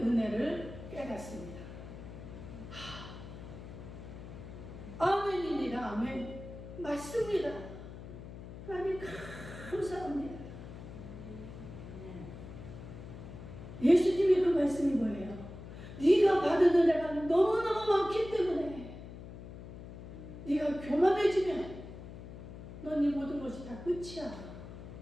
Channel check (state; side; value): noise; left; hum, 12 dB below the sound